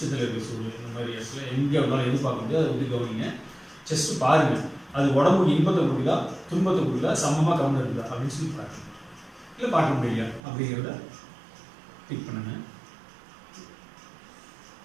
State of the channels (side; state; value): left; drops out; at 10.4 s